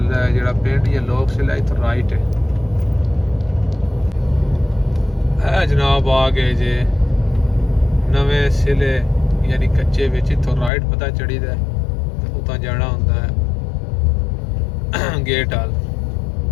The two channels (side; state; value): right; drops out; at 10.7 s